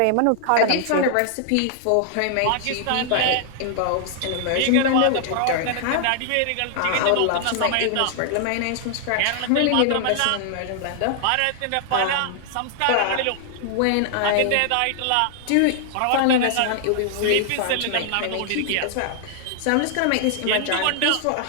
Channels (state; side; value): different; both; correlation -0.01